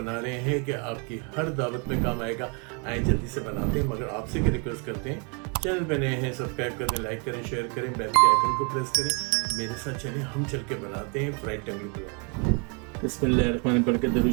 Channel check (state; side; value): quieter; left; 35.1 dB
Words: रहे हैं कि आपकी हर दावत में काम आएगा। आए जल्दी से बनाते हैं, मगर आपसे क्या रिक्वेस्ट करते हैं, चैनल पे नए हैं सब्सक्राइब कर दें, लाइक करें, शेयर करें, बेल के आइकन को प्रेस करें। मेरे साथ चलें, हम चल के बनाते हैं फ्राइड टंगड़ी पुलाव। बिस्मिल्लाहिर्रहमानिर्रहीम पढ़ के दरूद